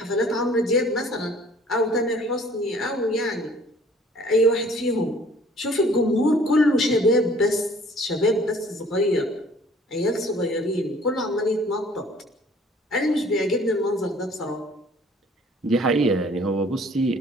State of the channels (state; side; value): normal; both; correlation 0.54